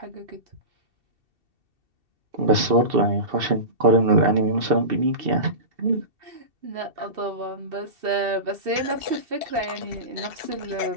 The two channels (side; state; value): left; late; 2.7 ms